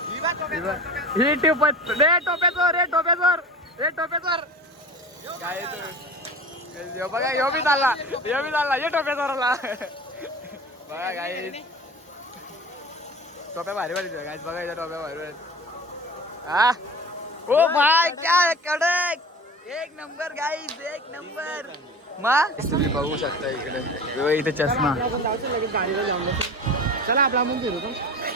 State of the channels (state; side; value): normal; both; correlation 0.36